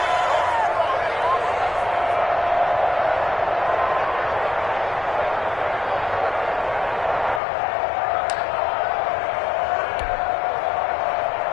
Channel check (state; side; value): drops out; right; at 7.4 s